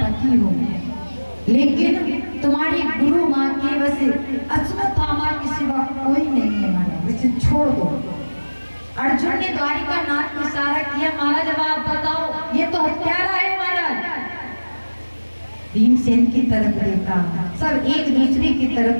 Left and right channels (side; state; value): both; inverted; correlation -1.00